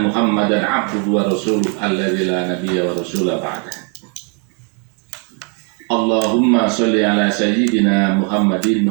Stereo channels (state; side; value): quieter; left; 34.5 dB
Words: Muhammadan abduhu wa rasuluh alladzi la nabiyya wa rasula ba'dah. Allahumma sholli ala sayyidina Muhammadin